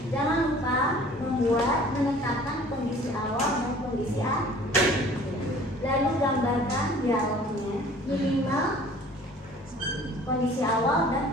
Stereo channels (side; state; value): both; normal; correlation 0.50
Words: Jangan lupa menetapkan kondisi awal dan kondisi akhir. Lalu gambarkan dialognya, minimal kondisi awal